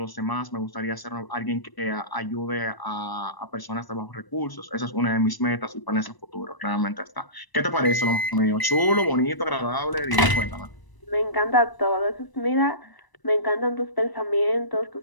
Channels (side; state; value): right; late; 1.0 ms